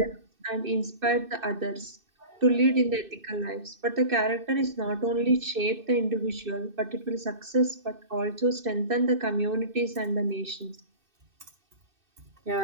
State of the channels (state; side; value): late; left; 2.6 ms